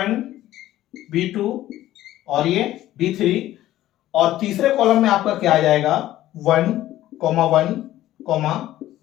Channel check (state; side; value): quieter; right; 14.2 dB